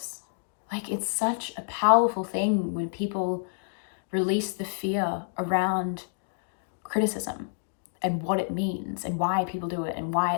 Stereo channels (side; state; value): right; silent; digital silence